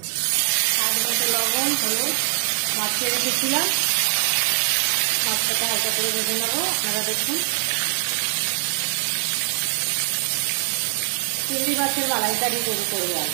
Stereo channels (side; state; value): left; silent; digital silence